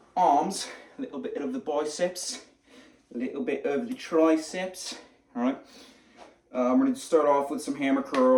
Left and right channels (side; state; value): both; identical; correlation 1.00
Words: arms, a little bit of the biceps, a little bit of the triceps. Alright, I'm going to start off with some hammer